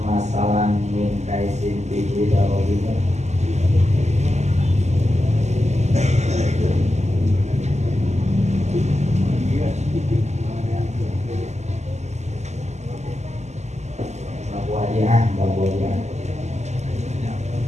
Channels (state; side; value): late; left; 0.33 ms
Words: masalan min kaisin bihi darohimu. Babu Wadiah.